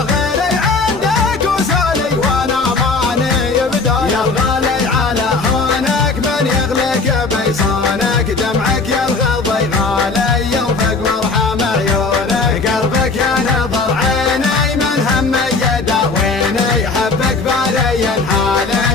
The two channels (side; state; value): right; quieter; 4.0 dB